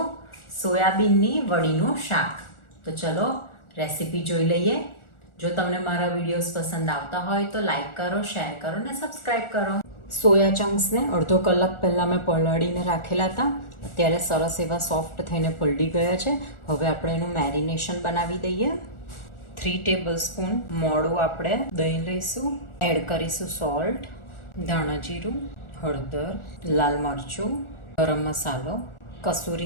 સોયાબીનની વડીનું શાક. તો ચલો રેસીપી જોઈ લઈએ. જો તમને મારા વિડીયોઝ પસંદ આવતા હોય તો લાઈક કરો, શેર કરો અને સબસ્ક્રાઈબ કરો. સોયા ચંક્સને અડધો કલાક પહેલાં મેં પલાળીને રાખેલા હતા. અત્યારે સરસ એવા સોફ્ટ થઈને પલળી ગયા છે. હવે આપણે એનું મેરિનેશન બનાવી દઈએ. 3 ટેબલસ્પૂન મોળું આપણે દહીં લઈશું. એડ કરીશું સોલ્ટ, ધાણા જીરું, હળદર, લાલ મરચું, ગરમ મસાલો, કસૂરી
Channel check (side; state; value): right; late; 1.4 ms